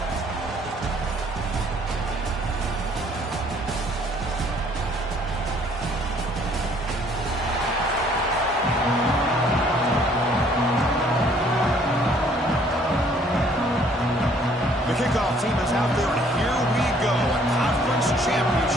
The kickoff team is out there, and here we go. A conference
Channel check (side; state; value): both; normal; correlation 0.60